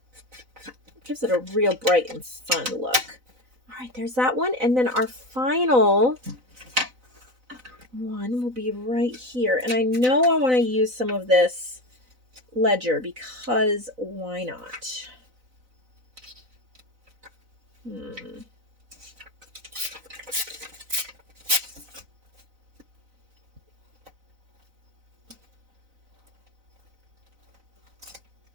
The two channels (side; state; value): left; late; 4.0 ms